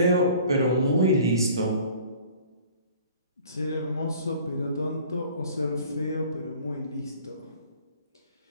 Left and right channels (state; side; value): inverted; both; correlation -0.49